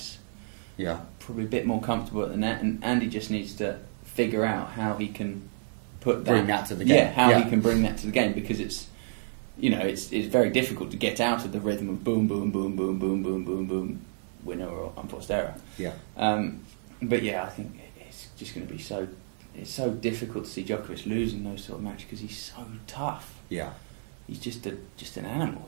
Yeah. Probably a bit more comfortable at the net, and Andy just needs to figure out how he can bring that to the game. Yeah, how he can bring that to the game, because it's very difficult to get out of the rhythm of boom, boom, boom, boom, boom, boom, boom, boom, winner or unforced error. Yeah. But yeah, I think it's just going to be so. It's so difficult to see Djokovic losing those sort of matches because he's so tough. Yeah. He's just an animal.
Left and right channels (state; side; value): silent; left; digital silence